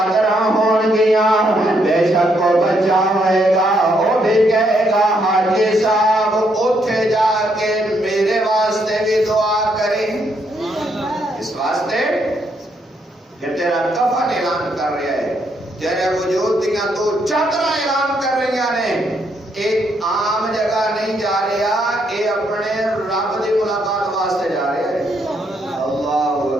ہون گیاں بے شک کو بچا ہوئے گا وہ بھی کہے گا حاجی صاحب اٹھے جا کے میرے واسطے بھی دعا کریں اس واسطے کہ تیرا کفن اعلان کر رہا ہے تیرے وجود دیاں تو چادراں اعلان کر رہی نے ایک عام جگہ نہیں جا رہا اے اپنے رب دی ملاقات واسطے جا رہا ہے اللہ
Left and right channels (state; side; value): normal; both; correlation 0.74